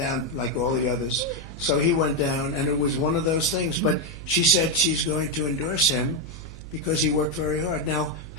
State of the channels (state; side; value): noise; right; hum, 13 dB below the sound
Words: like all the others. So he went down, and it was one of those things. But she said she's going to endorse him because he worked very hard. Now,